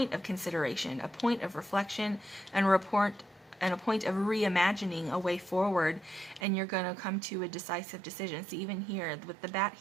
of consideration, a point of reflection, and a point of reimagining a way forward, and you're going to come to a decisive decision. So even here with the bat,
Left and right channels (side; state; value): left; drops out; at 6.4 s